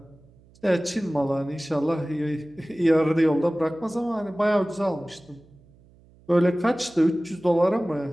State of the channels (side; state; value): right; noise; hum, 28 dB below the sound